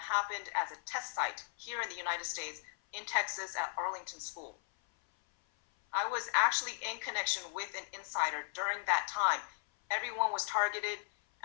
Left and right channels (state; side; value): silent; right; 53 dB below the other